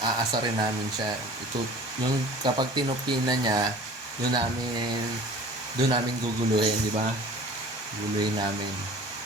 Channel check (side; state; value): left; late; 1.2 ms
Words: Aasarin namin siya. Yung kapag tinupin na niya, doon namin guguluhin, di ba? Guguluhin namin.